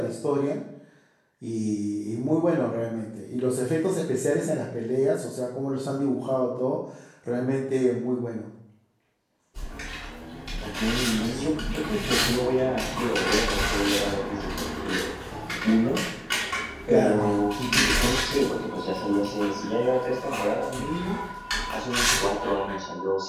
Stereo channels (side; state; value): both; identical; correlation 1.00